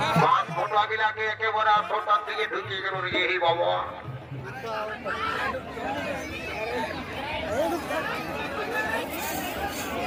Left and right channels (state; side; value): identical; both; correlation 1.00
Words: পাঁচ ফটো আগিলাকে একেবারে আটটার দিকে ঢুকিয়ে গেল রে এই বাবা